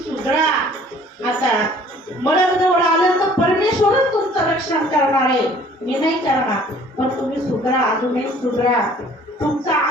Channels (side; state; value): both; normal; correlation 0.54